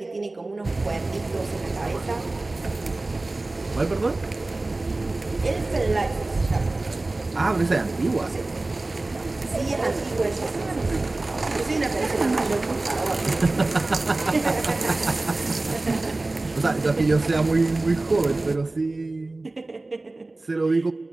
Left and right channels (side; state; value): left; quieter; 3.0 dB